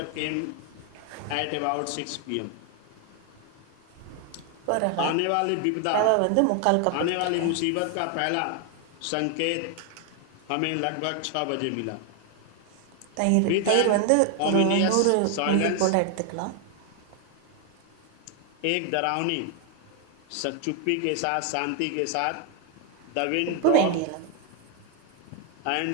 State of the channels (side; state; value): both; different; correlation 0.01